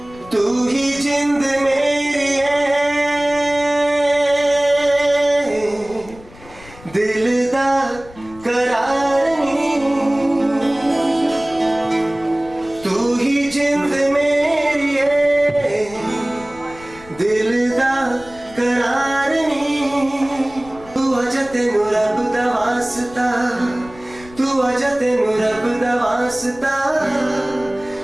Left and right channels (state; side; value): noise; left; rumble, 21 dB below the sound